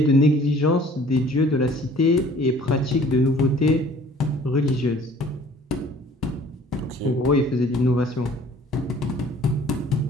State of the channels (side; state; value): both; normal; correlation 0.52